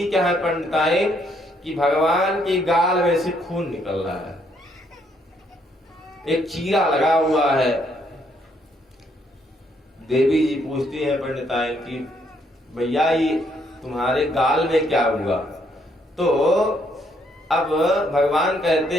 क्या है पंडिताइन कि भगवान की गाल में से खून निकल रहा है, एक चीरा लगा हुआ है। देवी जी पूछती है पंडिताइन की भैया ये तुम्हारे गाल में क्या हुआ। तो अब भगवान कहते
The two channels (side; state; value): both; normal; correlation 0.71